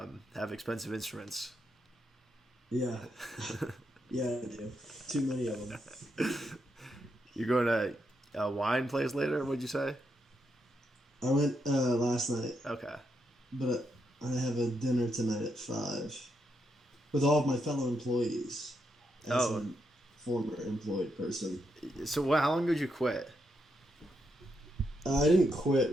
have expensive instruments. Yeah. Yeah, I do. Too many of them. You're going to a wine place later? What'd you say? I went last night. Okay. But I have a dinner tonight at 5 with all of my fellow employees. As a former employed person. So how long did you quit? I didn't quit,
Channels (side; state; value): both; normal; correlation 0.81